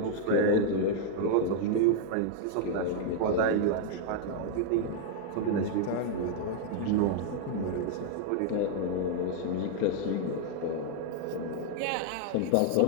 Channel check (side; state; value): both; different; correlation -0.01